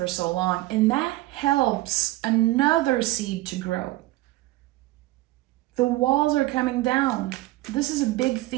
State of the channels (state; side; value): quieter; left; 18.0 dB